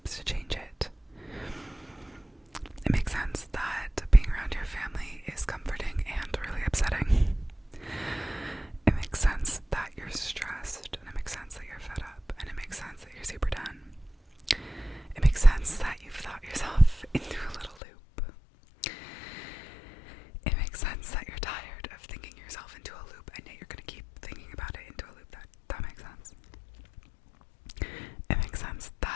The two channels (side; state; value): right; drops out; at 17.8 s